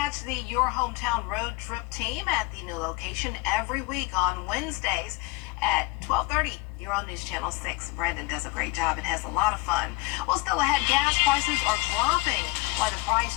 the Your Hometown road trip team at the new location every week on Wednesdays at 12:30. You're on News Channel 6. Brandon does a great job and has a lot of fun. Well, still ahead, gas prices are dropping. Why the price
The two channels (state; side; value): quieter; right; 23.7 dB